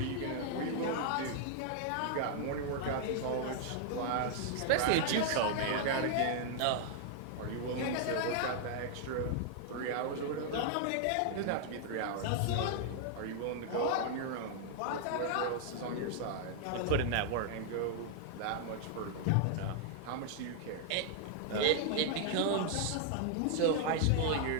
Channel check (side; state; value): both; different; correlation 0.00